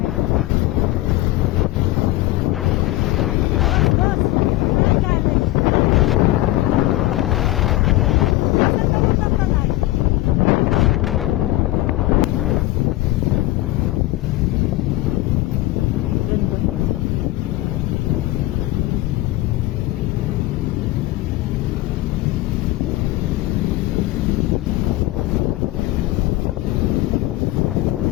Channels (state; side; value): quieter; right; 17.4 dB